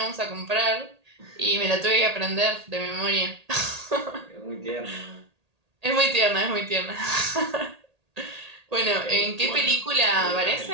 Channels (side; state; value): left; late; 1.8 ms